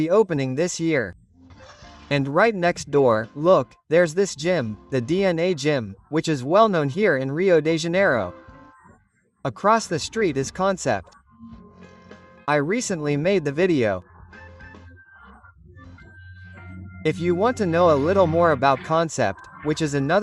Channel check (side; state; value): both; identical; correlation 1.00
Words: opening this year. And right next door, look, there's this gym, the DNA Gym, which is well known here in Rio de Janeiro. Across the street is Concept. I recently made the video. If you want to know a little more about Concept, which is